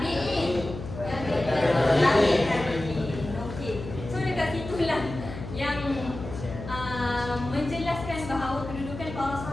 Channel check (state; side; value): noise; left; hum, 10 dB below the sound